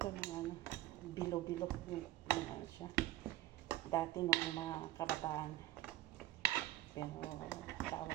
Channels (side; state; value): left; quieter; 15.7 dB